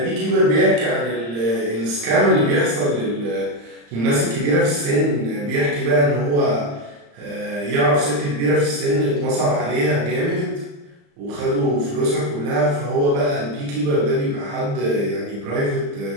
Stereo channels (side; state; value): left; late; 35 ms